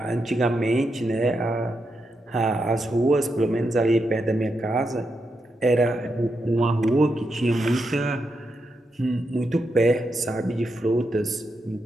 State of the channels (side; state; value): both; normal; correlation 0.84